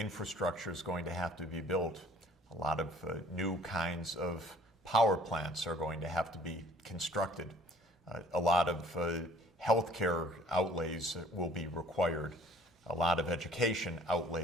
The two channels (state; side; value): normal; both; correlation 0.54